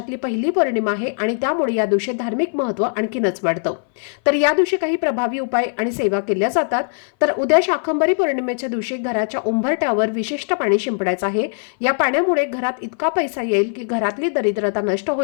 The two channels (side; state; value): right; silent; 59 dB below the other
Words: पहिली पौर्णिमा आहे आणि त्यामुळे या दिवशी धार्मिक महत्त्व आणखीनच वाढतं। तर या दिवशी काही प्रभावी उपाय आणि सेवा केल्या जातात। तर उद्या शाकंभरी पौर्णिमेच्या दिवशी घराच्या उंबरठ्यावर विशिष्ट पाणी शिंपडायचं आहे। या पाण्यामुळे घरात इतका पैसा येईल की घरातली दरिद्रता नष्ट